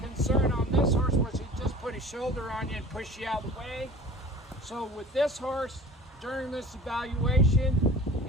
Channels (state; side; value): normal; both; correlation 0.43